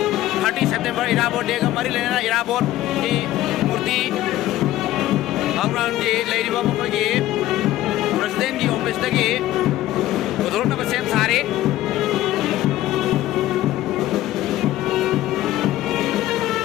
30 सितंबर इराबोट day का मरी लेना इराबोट की मूर्ति थाउ ग्राउंड की लेरिबा मखोगी प्रेसिडेंट की ऑफिस तकी उधोरना सेम सारे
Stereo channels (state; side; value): quieter; right; 14.8 dB